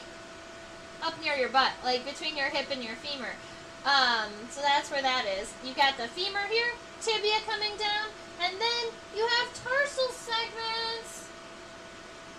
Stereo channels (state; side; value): identical; both; correlation 1.00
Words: up near your butt. Like, between your hip and your femur. So that's where that is. You got the femur here, tibia coming down, and then you have tarsal segments.